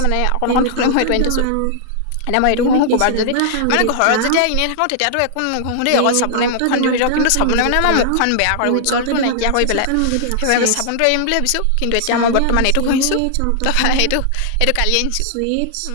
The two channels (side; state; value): both; different; correlation -0.01